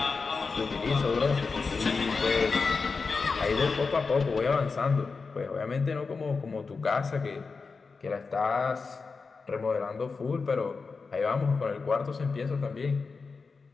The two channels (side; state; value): right; quieter; 4.6 dB